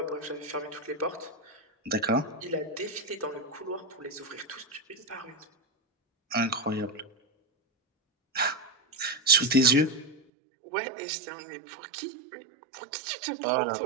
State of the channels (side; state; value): left; drops out; at 10.2 s